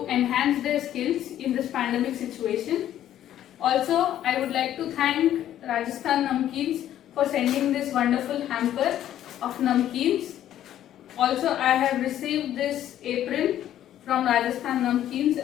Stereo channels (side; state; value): right; quieter; 11.7 dB